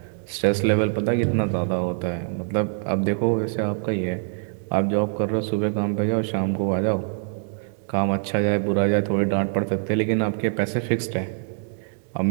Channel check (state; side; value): silent; left; 62 dB below the other